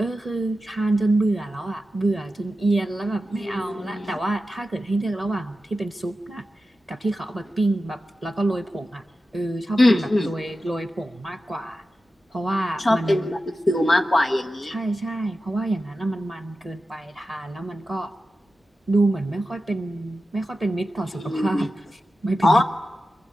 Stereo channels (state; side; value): normal; both; correlation 0.93